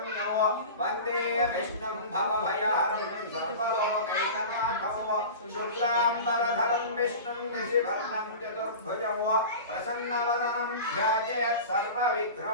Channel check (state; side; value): inverted; both; correlation -0.33